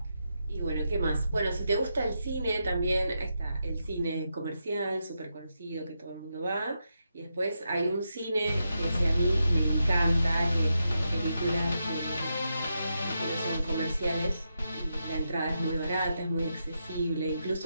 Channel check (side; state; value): both; inverted; correlation -0.85